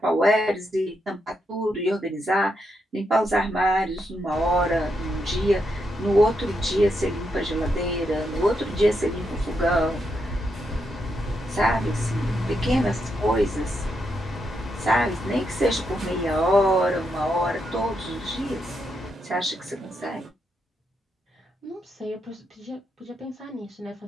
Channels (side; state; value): both; normal; correlation 0.81